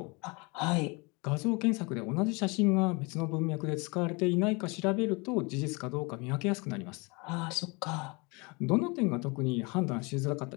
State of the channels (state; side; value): quieter; right; 28.5 dB